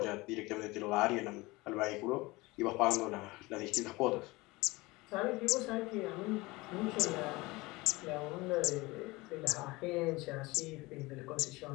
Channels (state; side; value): quieter; right; 22.1 dB